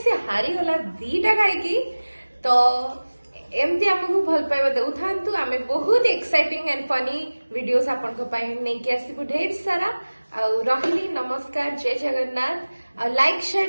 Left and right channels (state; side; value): inverted; both; correlation -1.00